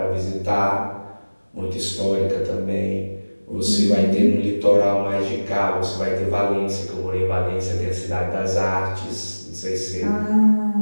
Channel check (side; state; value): both; inverted; correlation -1.00